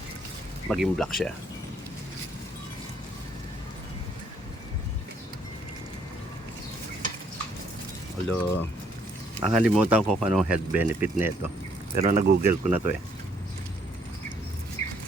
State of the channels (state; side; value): normal; both; correlation 0.67